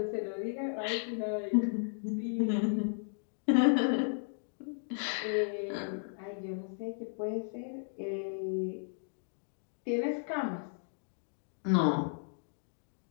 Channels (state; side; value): silent; right; digital silence